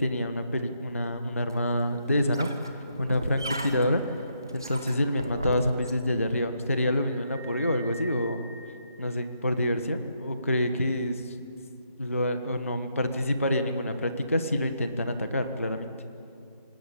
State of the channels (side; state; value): both; inverted; correlation -0.76